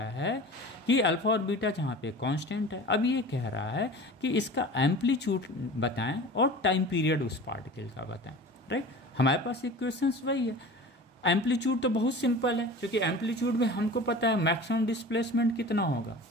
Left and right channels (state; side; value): normal; both; correlation 0.38